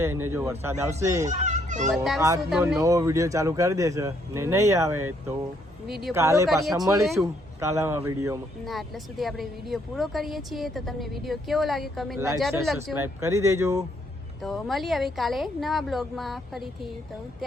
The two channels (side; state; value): both; normal; correlation 0.70